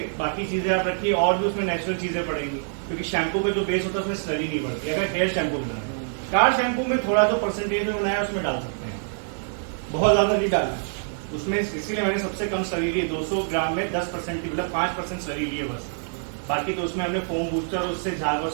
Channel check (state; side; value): silent; left; digital silence